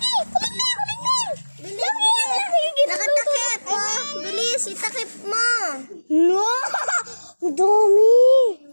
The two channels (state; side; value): inverted; both; correlation -1.00